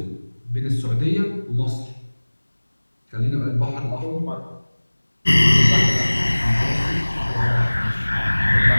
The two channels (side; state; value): both; inverted; correlation -1.00